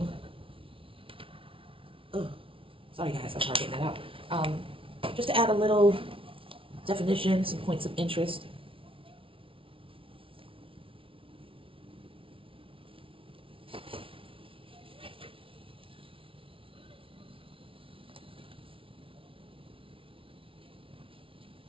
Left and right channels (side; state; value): left; late; 0.26 ms